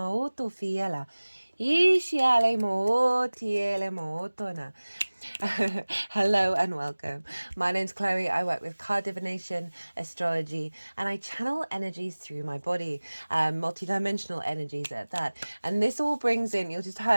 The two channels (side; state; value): both; inverted; correlation -1.00